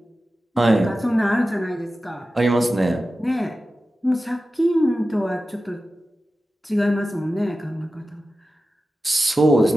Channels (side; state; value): both; normal; correlation 0.94